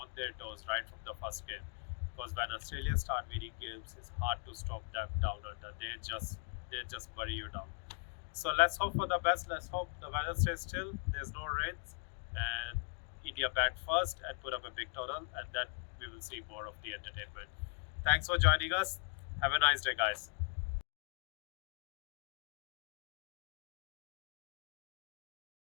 their toes right from the first game. Because when Australia start winning games, it's hard to stop them down under. They just bury you down. So let's hope for the best. Let's hope the weather stays still. There's no rains, and India bat first and put up a big total, and then we will see more of the entertainment. Thanks for joining us. Have a nice day, guys.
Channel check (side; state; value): right; silent; 51 dB below the other